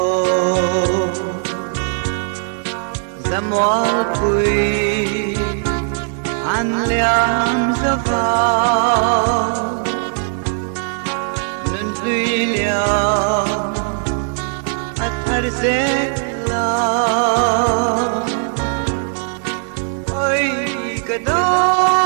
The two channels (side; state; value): left; silent; 67 dB below the other